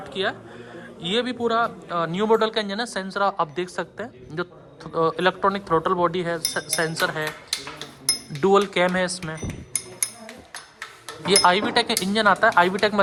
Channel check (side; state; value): both; identical; correlation 1.00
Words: किया है। ये भी पूरा न्यू मॉडल का इंजन है। सेंसर आप देख सकते हैं, जो इलेक्ट्रॉनिक थ्रोटल बॉडी है, सेंसर है, डुअल कैम है इसमें। ये IVTEC इंजन आता है, IVTEC